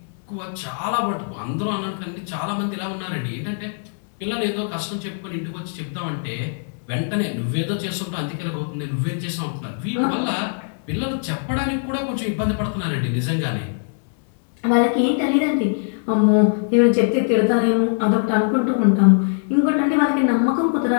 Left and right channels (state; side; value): silent; right; 64 dB below the other